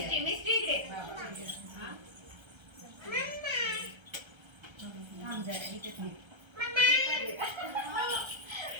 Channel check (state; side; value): late; left; 1.3 ms